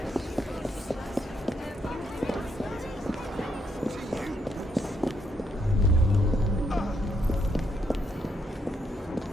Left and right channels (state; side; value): normal; both; correlation 0.75